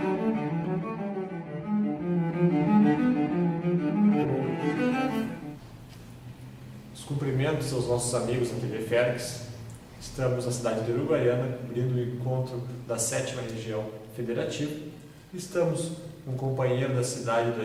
Os cumprimentos aos nossos amigos da TV Fergues. Estamos na cidade de Uruguaiana, abrindo o encontro da 7ª Região Federativa. Estamos com um companheiro da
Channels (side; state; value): both; identical; correlation 1.00